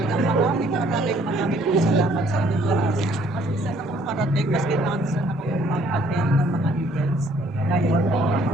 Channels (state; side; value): noise; right; rumble, 28 dB below the sound